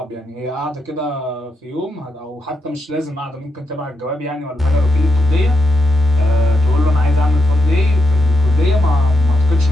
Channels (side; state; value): both; normal; correlation 0.83